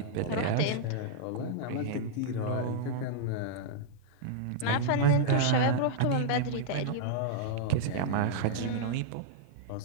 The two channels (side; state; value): both; different; correlation -0.02